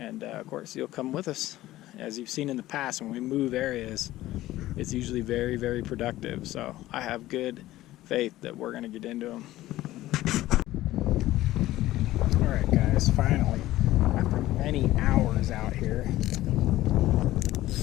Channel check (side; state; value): right; quieter; 15.7 dB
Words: of course, you'll come with us. As you've seen in the past, when we move areas, it's usually very, very productive. So I have good faith that we're gonna get into them. All right, guys, finally, after many hours out here,